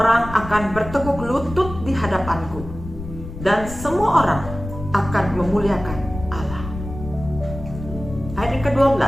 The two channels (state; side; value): noise; left; rumble, 11 dB below the sound